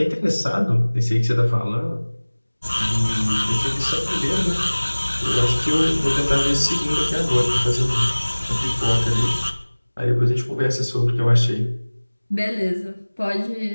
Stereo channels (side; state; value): both; inverted; correlation -1.00